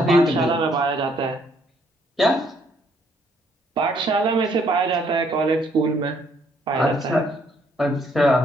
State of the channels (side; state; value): both; normal; correlation 0.67